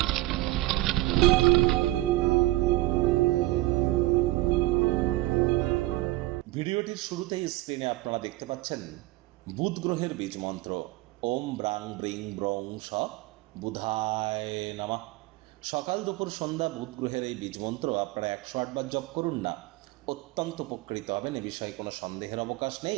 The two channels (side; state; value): left; quieter; 18.9 dB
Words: ভিডিওটির শুরুতেই স্ক্রিনে আপনারা দেখতে পাচ্ছেন বুধ গ্রহের বীজ মন্ত্র ওম ব্রাং ব্রিং ব্রং স বুধায় নমঃ। সকাল দুপুর সন্ধ্যা বুধ গ্রহের এই বীজ মন্ত্র আপনারা 108 বার জপ করুন না, অত্যন্ত উপকৃত হবেন, এ বিষয়ে কোনো সন্দেহের অবকাশ